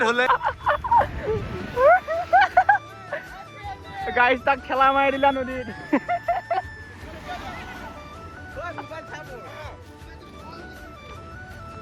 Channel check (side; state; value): both; identical; correlation 1.00